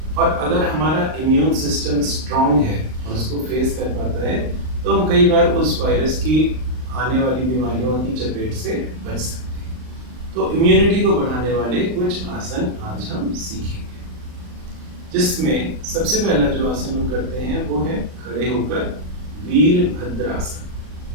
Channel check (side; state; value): left; late; 39 ms